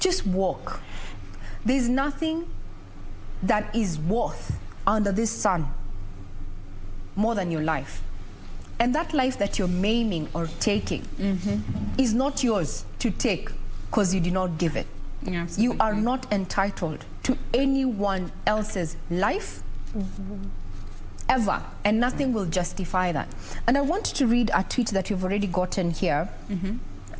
walk. There's nothing that is worth under this sun more than your life. And that life that you're maiming or taking is not yours to take because you did not give it. Yeah, you are not entitled to anyone else's life ever, and nothing will justify that. And I want to read a tweet that you've already gotten here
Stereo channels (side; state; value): both; identical; correlation 1.00